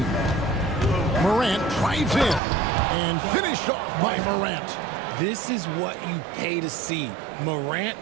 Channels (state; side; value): drops out; left; at 2.4 s